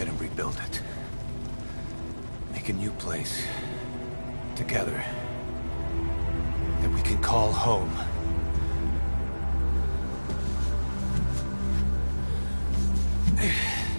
rebuild it. Make a new place. Together. That we can call home.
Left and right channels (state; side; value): inverted; both; correlation -1.00